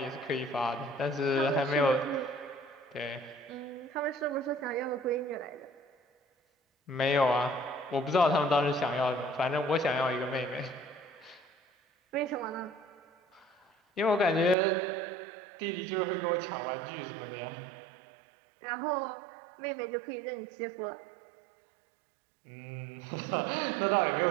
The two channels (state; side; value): drops out; left; at 14.6 s